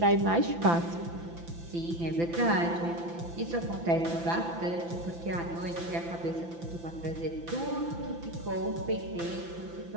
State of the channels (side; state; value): left; late; 5.9 ms